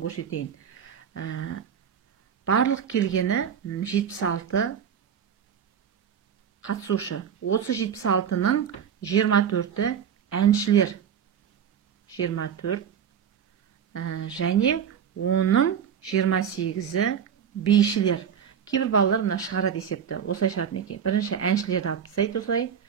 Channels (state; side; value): quieter; left; 8.1 dB